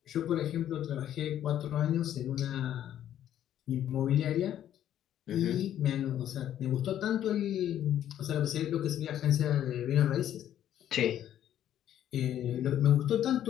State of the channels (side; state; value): right; quieter; 11.1 dB